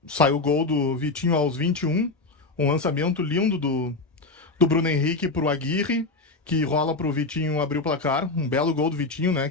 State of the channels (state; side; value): quieter; right; 3.4 dB